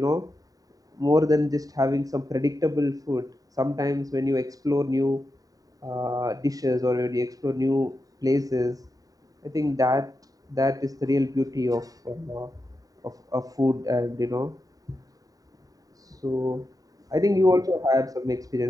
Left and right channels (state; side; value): late; left; 0.18 ms